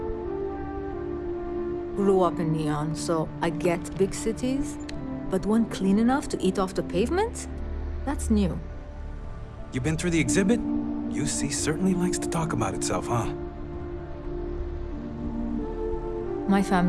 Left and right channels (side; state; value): both; identical; correlation 1.00